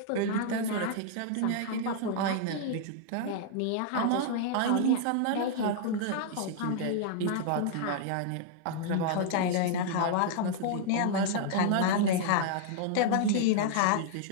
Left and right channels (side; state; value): both; different; correlation -0.01